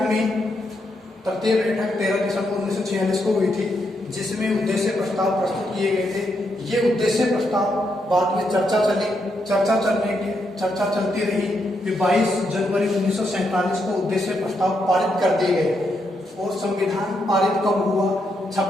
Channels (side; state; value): both; normal; correlation 0.80